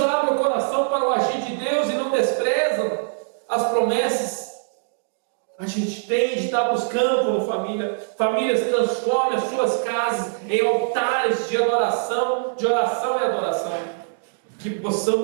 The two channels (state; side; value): silent; left; digital silence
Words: o coração para o agir de Deus e não desprezam as promessas. A gente tem de estar buscando como família. Famílias, transformem as suas casas em altares de adoração, de oração e adoração. Que